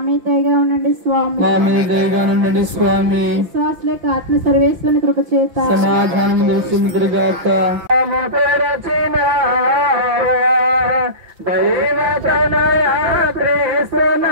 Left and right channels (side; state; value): left; late; 5.9 ms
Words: మీద దయగా ఉండండి స్వామి. మా మీద దయగా ఉండండి స్వామి. విశ్వాసులేక ఆత్మ సర్వేశ్వరుని కృప చేత సమాధానం దర్శించుడు గాక. దైవతనయ